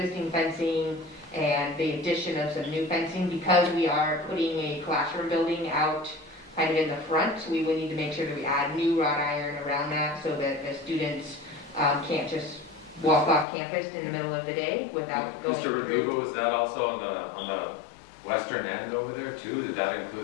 fencing and the addition of some new fencing. Because we are putting a classroom building out kind of in the front, we would need to make sure that we add new wrought iron around that so that the students can't just walk off campus in the middle of the day without going Mr. through. Verdugo, was that also on the western end over there too? Did that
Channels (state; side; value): drops out; right; at 13.5 s